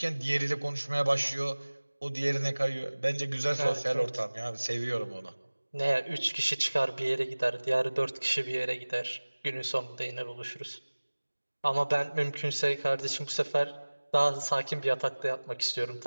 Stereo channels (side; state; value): both; inverted; correlation -1.00